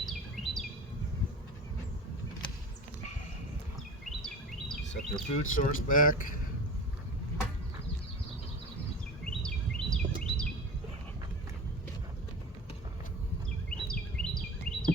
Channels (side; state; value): both; normal; correlation 0.33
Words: Set their food source back.